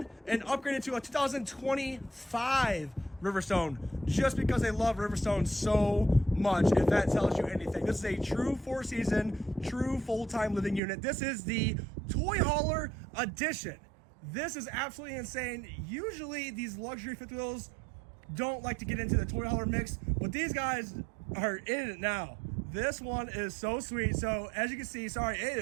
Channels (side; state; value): left; drops out; at 10.8 s